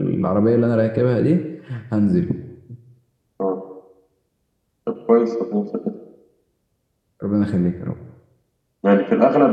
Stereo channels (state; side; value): identical; both; correlation 1.00